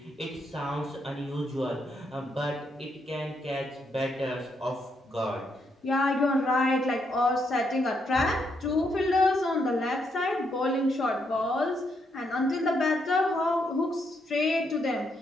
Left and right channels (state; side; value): normal; both; correlation 0.77